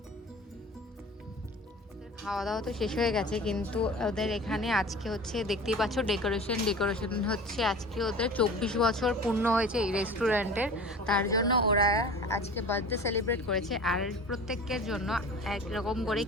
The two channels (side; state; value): both; normal; correlation 0.38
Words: খাওয়া দাওয়া তো শেষ হয়ে গেছে, কিন্তু ওদের এখানে আজকে হচ্ছে দেখতেই পাচ্ছ ডেকোরেশন হচ্ছে। আজকে ওদের 24 বছর পূর্ণ হয়েছে এই রেস্টুরেন্টের, তার জন্য ওরা আজকে বার্থডে সেলিব্রেট করেছে। আর প্রত্যেকের জন্য একরকম করে